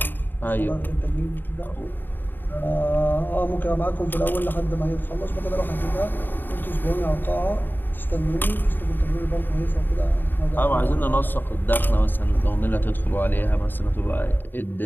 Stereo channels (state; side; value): late; right; 0.093 ms